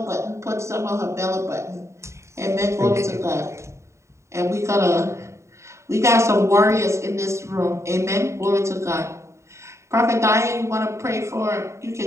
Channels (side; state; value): left; late; 0.14 ms